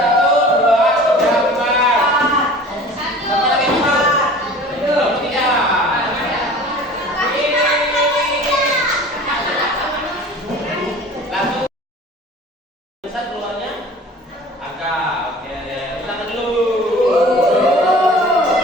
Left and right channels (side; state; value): both; normal; correlation 0.43